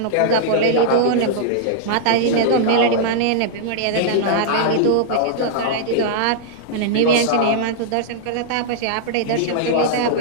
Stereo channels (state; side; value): different; both; correlation -0.02